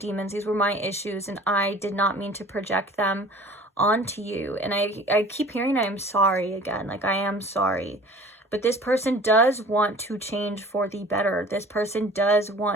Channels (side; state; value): both; normal; correlation 0.46